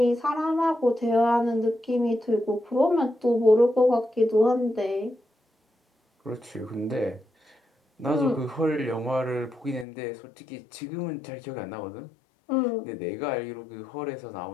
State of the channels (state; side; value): drops out; right; at 9.9 s